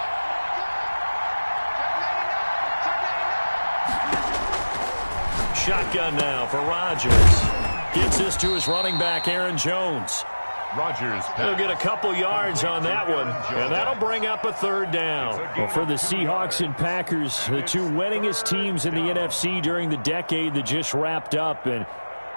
Shotgun now for Rodgers. Gets this to his running back, Aaron Jones. Rodgers. He'll get a couple yards on that one, and that'll bring up a third down. Well, for the Seahawks and Packers, the two winningest teams in the NFC during the decade that just wrapped up. And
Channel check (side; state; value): both; inverted; correlation -1.00